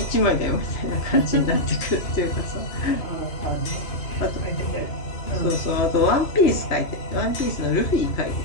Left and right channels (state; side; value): late; right; 3.0 ms